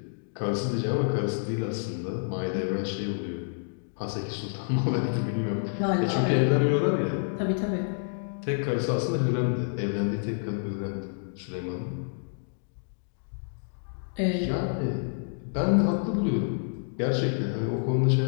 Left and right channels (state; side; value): silent; right; digital silence